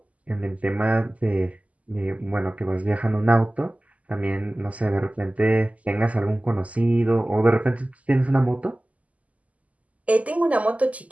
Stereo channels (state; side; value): late; left; 0.071 ms